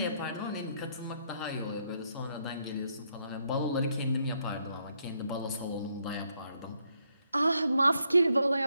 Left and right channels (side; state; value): both; inverted; correlation -0.75